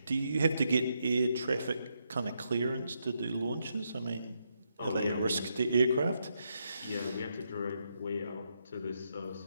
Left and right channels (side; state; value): both; inverted; correlation -0.80